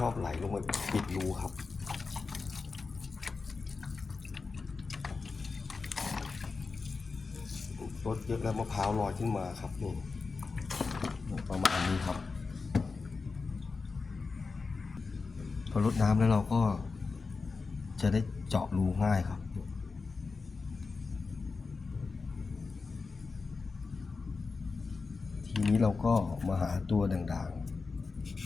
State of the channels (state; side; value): quieter; right; 4.4 dB